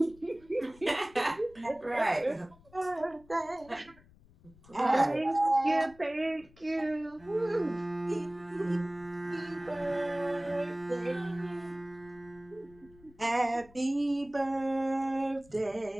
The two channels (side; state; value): left; noise; rumble, 25 dB below the sound